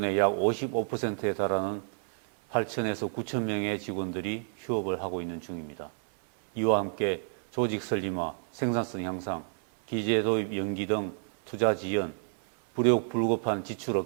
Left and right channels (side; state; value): left; silent; digital silence